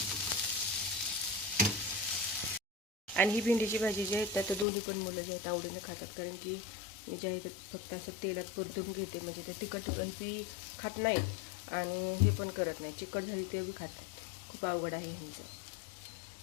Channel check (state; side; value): drops out; right; at 4.7 s